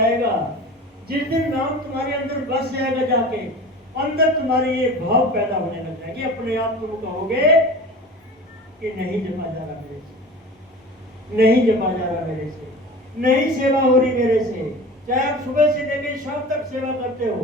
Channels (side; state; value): both; normal; correlation 0.37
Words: जिस दिन नाम तुम्हारे अंदर बस जाएगा, जाके अंदर तुम्हारे ये भाव पैदा होने लग जाएगी, अपने आप तुम कहोगे कि नहीं जपा जा रहा मेरे से, नहीं जपा जा रहा मेरे से, नहीं सेवा हो रही मेरे से। चाहे आप सुबह से लेकर शाम तक सेवा करते